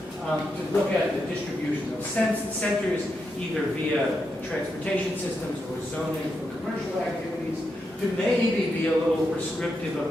to look at the distribution of centers, either via transportation systems or zoning for commercial activities, to maybe be a little prescriptive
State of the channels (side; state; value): both; normal; correlation 0.84